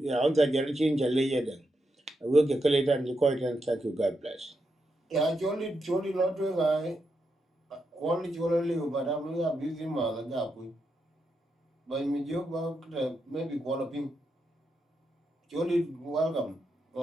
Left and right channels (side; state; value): both; normal; correlation 0.84